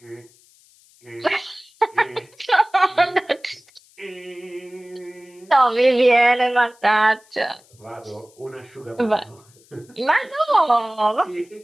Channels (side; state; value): left; noise; hiss, 29 dB below the sound